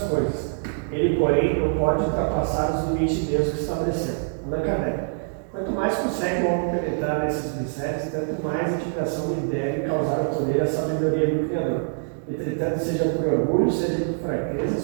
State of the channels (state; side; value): silent; left; digital silence